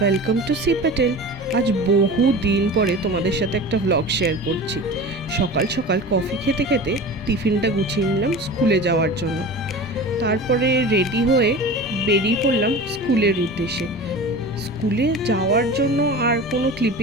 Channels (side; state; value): both; normal; correlation 0.34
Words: to C Patel. আজ বহু দিন পরে তোমাদের সাথে একটা ভ্লগ শেয়ার করছি। সকাল সকাল কফি খেতে খেতে টিফিনটা গুছিয়ে নিলাম স্কুলে যাওয়ার জন্য। তারপরে রেডি হয়ে বেরিয়ে পড়লাম স্কুলের উদ্দেশ্যে। স্কুলে যাওয়ার জন্য আর কোনো